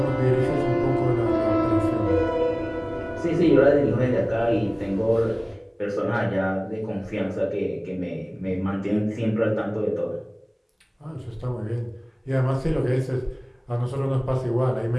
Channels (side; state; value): both; identical; correlation 1.00